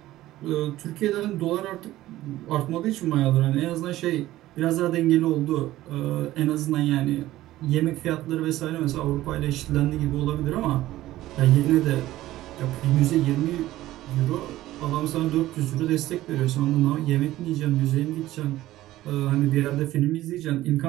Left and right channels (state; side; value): quieter; left; 15.5 dB